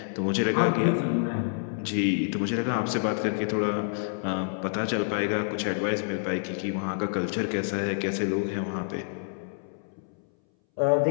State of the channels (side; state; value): right; silent; 60 dB below the other